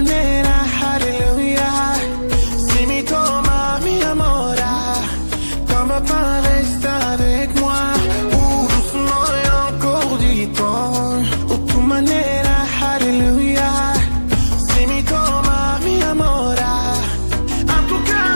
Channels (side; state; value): both; inverted; correlation -1.00